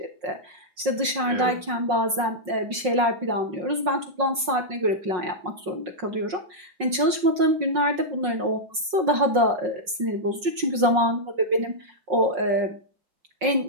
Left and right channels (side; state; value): left; late; 5.5 ms